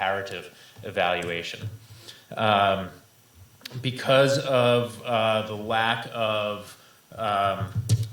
evaluation. Because of the lack of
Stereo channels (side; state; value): both; identical; correlation 1.00